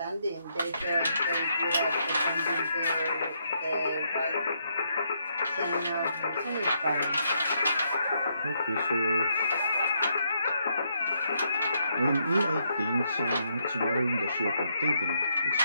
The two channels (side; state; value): both; inverted; correlation -0.76